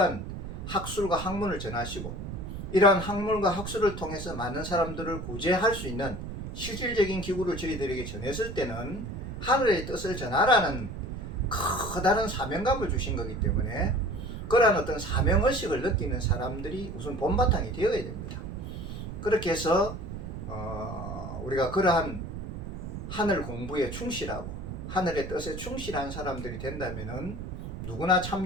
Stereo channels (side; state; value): right; noise; rumble, 8 dB below the sound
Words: 학술과 학문을 전하시고 이러한 학문과 학술을 통해서 많은 사람들을 구제할 수 있는 실질적인 기구를 저희들에게 전했을 때는 하늘의 뜻을 전하라는 커다란 사명감을 주신 거기 때문에 그러한 어떤 사명의식을 느끼는 사람들이 우선 본바탕이 되어야 됩니다. 그렇게 해서 우리가 그러한 하늘 공부에 충실하고 하늘의 뜻에 충실한 사람들이 된다면은 누구나